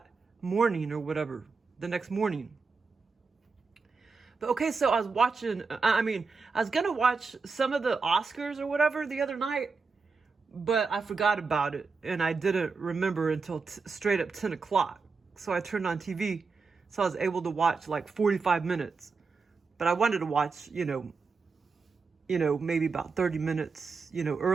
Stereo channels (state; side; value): quieter; left; 4.7 dB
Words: morning or whatever, the next morning. But okay, so I was watching, I was gonna watch some of the OSCARS or whatever the other night, but I forgot about it, and I didn't remember until straight up 10 o'clock. So I turned on TV, so I was able to watch like 45 minutes. But I wanted to watch, maybe about 30 minutes,